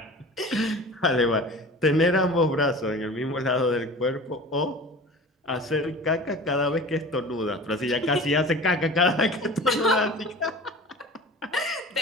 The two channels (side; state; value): both; normal; correlation 0.39